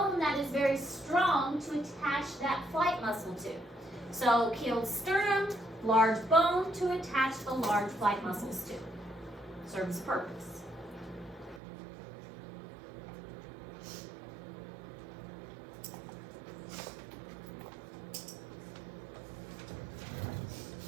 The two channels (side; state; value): left; drops out; at 11.6 s